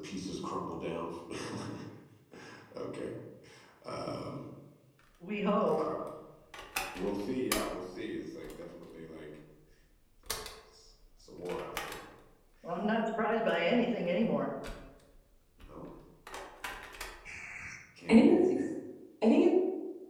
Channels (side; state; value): both; identical; correlation 1.00